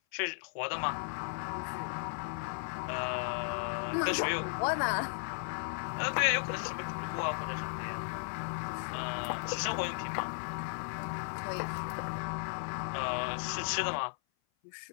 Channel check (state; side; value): silent; right; 54 dB below the other